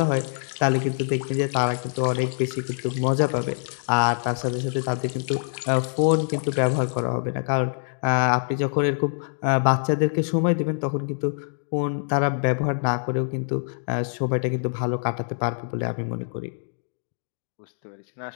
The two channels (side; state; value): right; silent; 62 dB below the other